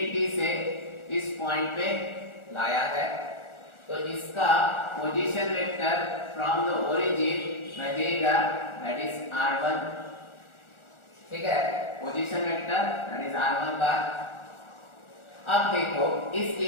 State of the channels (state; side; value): late; right; 1.4 ms